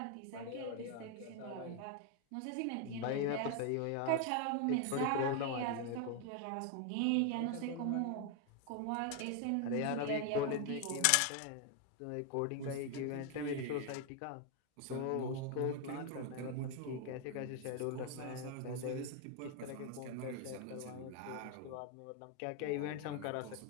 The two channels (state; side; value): different; both; correlation 0.01